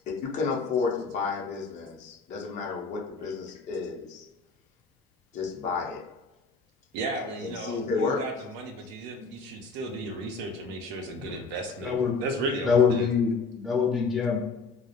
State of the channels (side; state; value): right; quieter; 4.1 dB